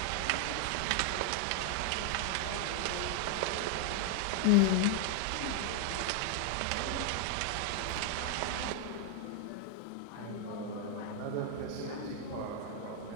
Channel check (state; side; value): different; both; correlation 0.00